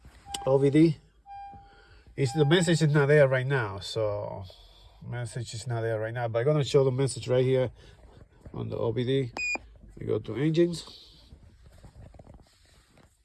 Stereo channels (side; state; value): both; identical; correlation 1.00